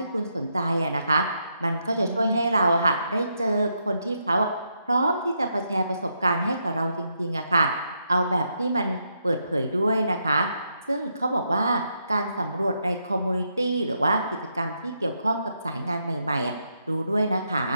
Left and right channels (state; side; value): inverted; both; correlation -0.80